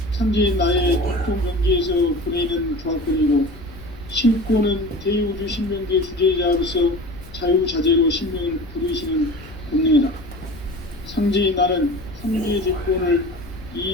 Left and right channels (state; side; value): noise; left; rumble, 18 dB below the sound